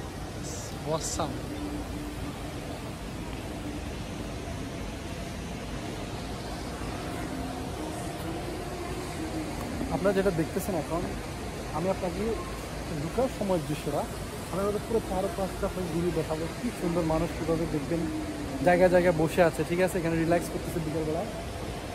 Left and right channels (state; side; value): identical; both; correlation 1.00